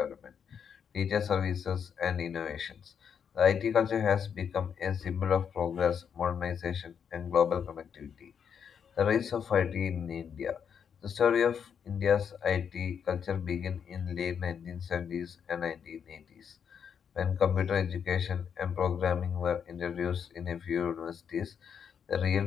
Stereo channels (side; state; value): right; quieter; 7.4 dB